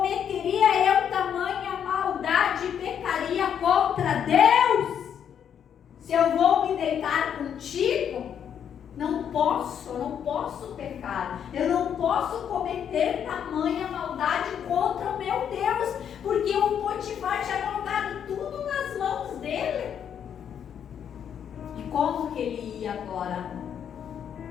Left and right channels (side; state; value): right; quieter; 8.6 dB